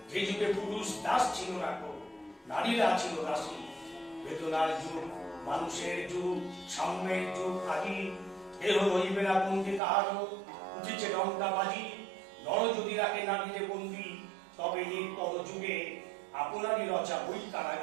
যে যুগে পুরুষ দাস ছিল না কো, নারীরা ছিল দাসী। বেদনার যুগ, মানুষের যুগ, সাম্যের যুগ আদি, এহ রইবে না পন্থী কাহারও, উঠেছে লঙ্কা বাজি, নর যদি রাখে নামিলে বন্দি, তবে এই পর যুগে আপনারই রচা ওই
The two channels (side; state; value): left; drops out; at 9.8 s